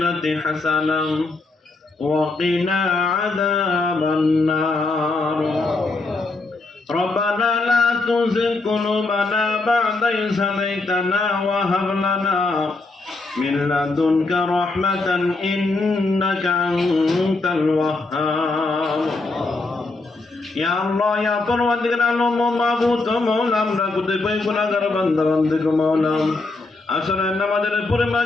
حسنة وقنا عذاب النار. ربنا لا تزغ قلوبنا بعد إذ هديتنا وهب لنا من لدنك رحمة إنك أنت الوهاب. या अल्लाह या परवरदिगार आलम माबूद मौला আমরা কতিপয় গুনাহগার বান্দা বান্দিকে মৌলা আসলে নামাজের পরে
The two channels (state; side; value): quieter; right; 3.4 dB